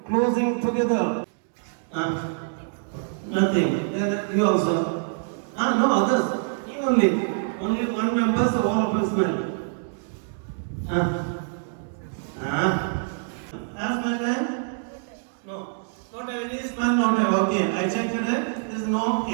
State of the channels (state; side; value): silent; left; digital silence